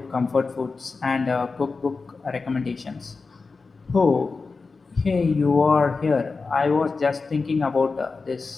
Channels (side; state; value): right; quieter; 4.3 dB